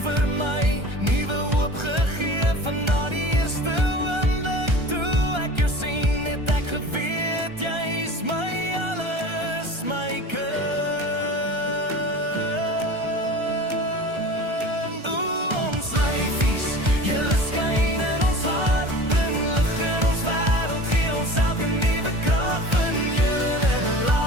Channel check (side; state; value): left; late; 1.3 ms